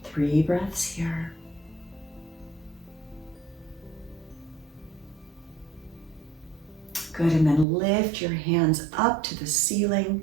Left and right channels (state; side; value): drops out; left; at 7.7 s